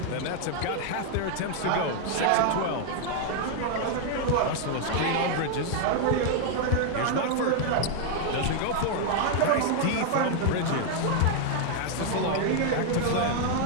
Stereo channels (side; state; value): both; different; correlation 0.00